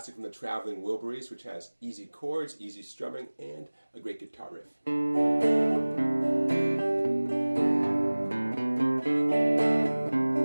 from the traveling Wilburys, which has easy chords, easy strumming, and a great guitar riff.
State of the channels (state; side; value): inverted; both; correlation -1.00